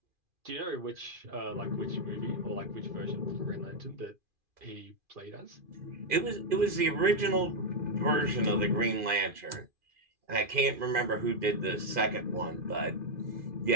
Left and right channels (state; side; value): late; left; 2.4 ms